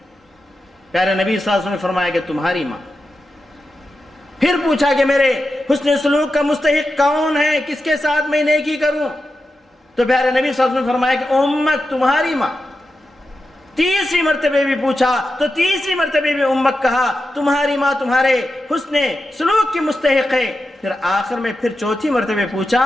پیارے نبی صلی اللہ علیہ وسلم نے فرمایا کہ تمہاری ماں۔ پھر پوچھا کہ میرے حسن سلوک کا مستحق کون ہے، کس کے ساتھ میں نیکی کروں؟ تو پیارے نبی صلی اللہ علیہ وسلم نے فرمایا کہ امک، تمہاری ماں۔ تیسری مرتبہ بھی پوچھا تو تیسری مرتبہ بھی امک کہا، تمہاری ماں تمہارے حسن سلوک کی مستحق ہے۔ پھر آخر میں پھر چوتھی مرتبہ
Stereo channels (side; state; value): both; normal; correlation 0.90